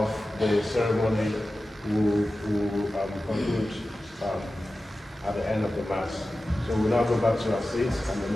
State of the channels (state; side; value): normal; both; correlation 0.94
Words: the ceremony will conclude at the end of the Mass. So we'll now go back to our seats and the